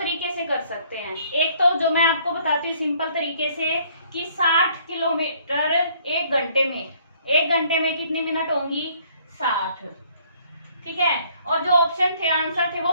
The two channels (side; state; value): both; inverted; correlation -0.62